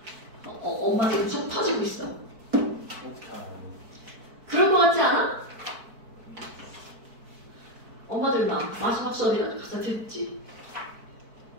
엄마 지금 속 터지고 있어. 그럴 것 같지 않아? 엄마들만 마지막 수업이라도 가서 듣지.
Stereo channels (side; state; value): left; late; 4.5 ms